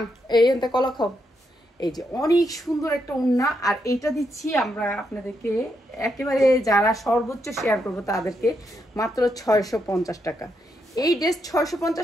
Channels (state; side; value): normal; both; correlation 0.81